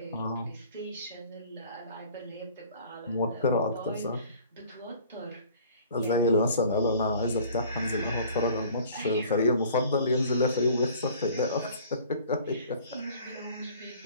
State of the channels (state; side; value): inverted; both; correlation -0.50